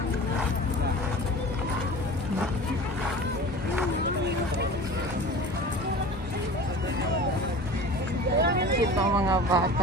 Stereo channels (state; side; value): normal; both; correlation 0.38